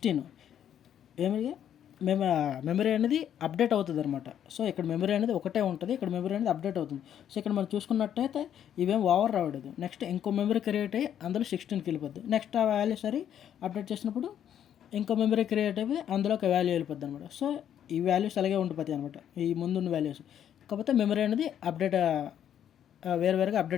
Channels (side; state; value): right; quieter; 9.8 dB